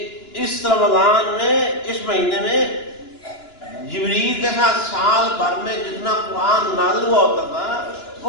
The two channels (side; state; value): right; late; 2.9 ms